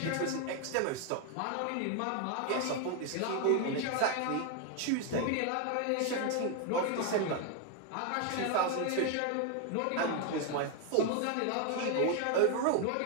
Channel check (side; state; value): both; different; correlation 0.01